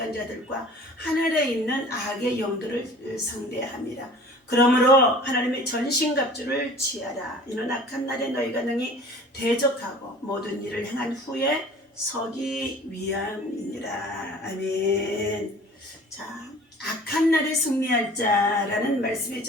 하늘에 있는 악의 영들을 상대함이라. 그러므로 하나님의 전신갑주를 취하라. 이는 악한 날에 너희가 능히 대적하고 모든 일을 행한 후에 서기 위함이니라. 아멘. 자, 악한 날에 승리할 자라는 말씀의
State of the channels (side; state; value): both; normal; correlation 0.45